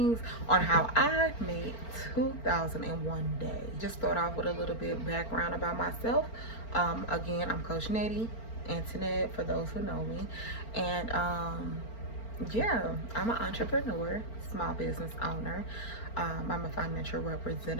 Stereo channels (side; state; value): right; late; 4.4 ms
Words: on how I made 2001 day. Just start off with a little bit background about myself. Again, I'm Coach Nady, Antoinette, for those who know me, and yeah, I'm an entrepreneur, small business owner. I'm a financial